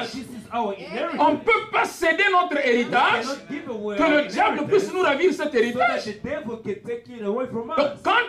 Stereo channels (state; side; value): identical; both; correlation 1.00